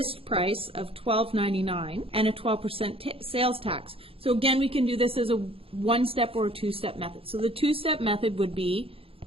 price of $12.99 and a 12% sales tax. So again, we can do this as a one-step or a two-step method. So the two-step method would be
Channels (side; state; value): left; late; 0.27 ms